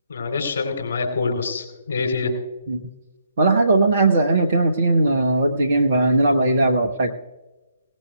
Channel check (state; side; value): inverted; both; correlation -0.74